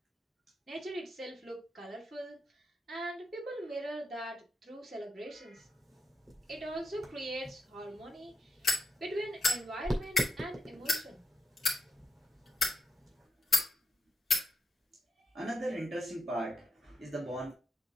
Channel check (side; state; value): both; normal; correlation 0.85